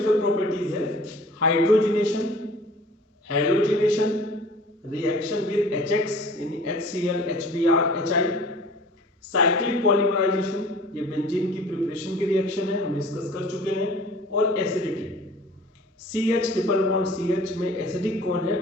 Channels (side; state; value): both; normal; correlation 0.46